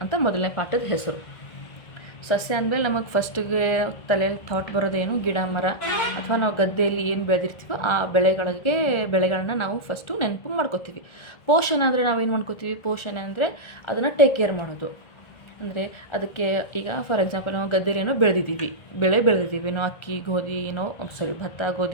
ಅಂತ ಮೊದಲನೇ ಪಾಠದ ಹೆಸರು. ಸಸ್ಯ ಅಂದಮೇಲೆ ನಮಗೆ ಫಸ್ಟಿಗೆ ತಲೆಯಲ್ಲಿ ಥಾಟ್ ಬರೋದೇನು, ಗಿಡ ಮರ ಅಥವಾ ನಾವು ಗದ್ದೆಯಲ್ಲಿ ಏನು ಬೆಳೆದಿರ್ತೀವೋ ಆ ಬೆಳೆಗಳನ್ನ ನಾವು ಫಸ್ಟು ನೆನಪು ಮಾಡ್ಕೋತೀವಿ. ಪೋಷಣೆ ಅಂದರೆ ನಾವೇನು ಮಾಡ್ಕೋತೀವಿ, ಪೋಷಣೆ ಅಂದರೆ ಅದನ್ನು ಟೇಕ್ ಕೇರ್ ಮಾಡೋದು. ಅಂದರೆ ಅದಕ್ಕೆ ಈಗ ಫಾರ್ ಎಕ್ಸಾಂಪಲ್ ನಾವು ಗದ್ದೆಯಲ್ಲಿ ಏನೋ ಬೆಳೆದಿದ್ದೀವಿ, ನಾವು ಅಕ್ಕಿ ಗೋಧಿ ಭತ್ತ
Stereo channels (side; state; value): right; late; 1.3 ms